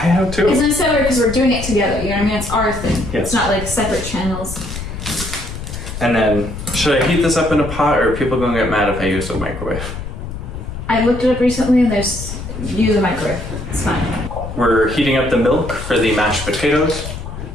too. It's nice because we're doing it together. You know what I mean? It's our thing. Yes. It's not like separate channels. And then, should I heat this up in a pot, or are people gonna get mad if I use a microwave? I looked it up recently, and use a microwave. It's fine. We're heating up the milk for the mashed potatoes.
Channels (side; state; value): left; noise; rumble, 8 dB below the sound